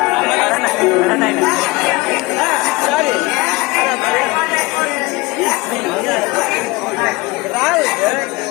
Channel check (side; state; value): right; quieter; 22.8 dB